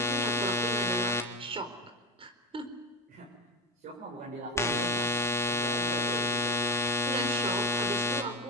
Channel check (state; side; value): normal; both; correlation 0.15